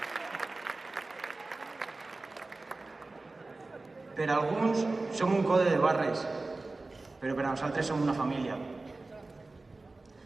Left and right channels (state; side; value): quieter; left; 3.3 dB